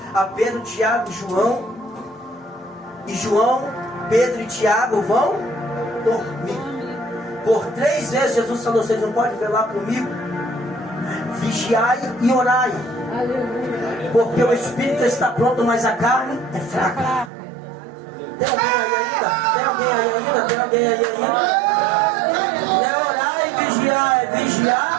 a Pedro, Tiago e João. E João, Pedro e Tiago vão dormir. Por 3 vezes Jesus falou: vocês não podem velar comigo? Vigiai e orai. Porque o espírito está pronto, mas a carne é fraca. Tem alguém aí ainda? Tem alguém aí ainda? Tem alguém aí ainda? É orar e vigiar. É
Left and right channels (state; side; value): drops out; left; at 17.3 s